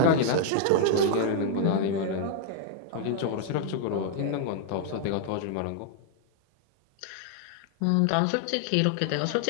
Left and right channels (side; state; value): both; different; correlation 0.00